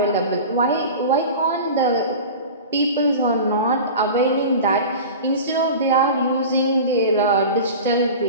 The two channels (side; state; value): both; inverted; correlation -0.34